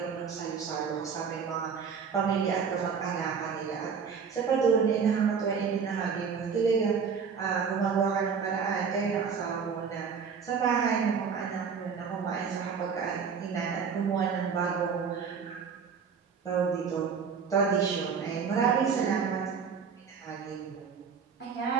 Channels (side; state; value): left; quieter; 6.2 dB